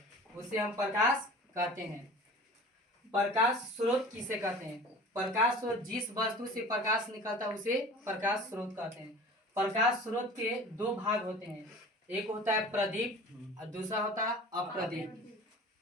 उसे हम प्रकाश कहते हैं। प्रकाश स्रोत किसे कहते हैं? प्रकाश स्रोत जिस वस्तु से प्रकाश निकलता है उसे प्रकाश स्रोत कहते हैं। प्रकाश स्रोत के दो भाग होते हैं, एक होता है प्रदीप्त और दूसरा होता है अप्रदीप्त।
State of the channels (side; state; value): both; normal; correlation 0.41